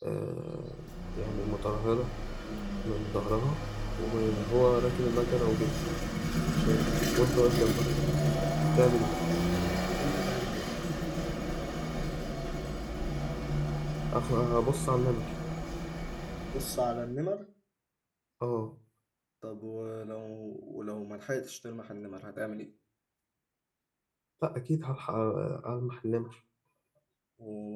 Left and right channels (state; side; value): identical; both; correlation 1.00